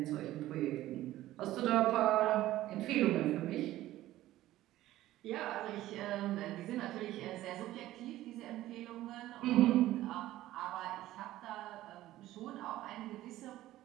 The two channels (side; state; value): left; quieter; 15.1 dB